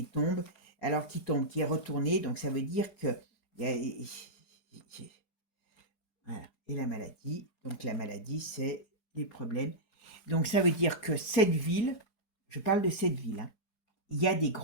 tombe, alors qui tombe, qui est retourné, donc ça veut dire que voilà. Et la maladie, donc la maladie, c'est les problèmes. Donc ça veut dire que cette ville, je parle de cette ville, hein, il y a des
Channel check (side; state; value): right; late; 4.8 ms